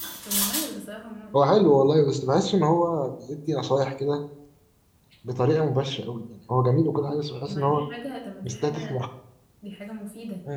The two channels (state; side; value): identical; both; correlation 1.00